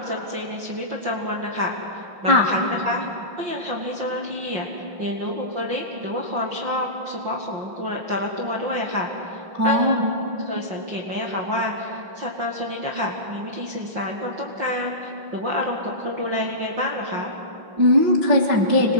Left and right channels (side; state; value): left; late; 5.8 ms